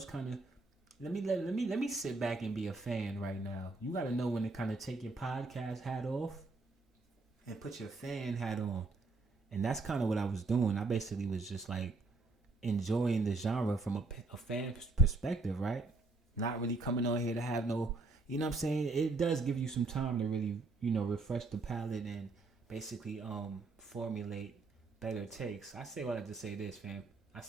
kind of let me sit back and be a fan right now. You got to know when to kind of take your podcast hat off and put your fan hat on, and that's kind of what I was doing. I basically was just like enjoying the genre from a fan perspective, right? Not really coming on here to have no, you know what I'm saying? It does give you some time to really, refresh the palate and basically formulate better takes. I say all that to say this, fam.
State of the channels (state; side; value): quieter; left; 3.5 dB